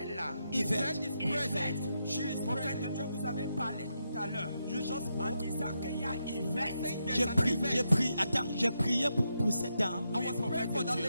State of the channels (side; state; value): both; inverted; correlation -0.84